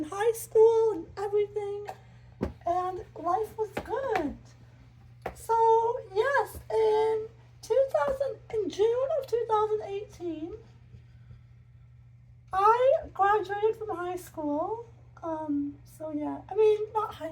high school and everything, and life was good. So yes, in June of 2018, I graduated from high school. So yeah, not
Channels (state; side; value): identical; both; correlation 1.00